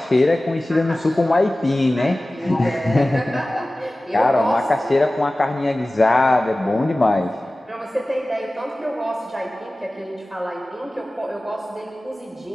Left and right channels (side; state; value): both; normal; correlation 0.97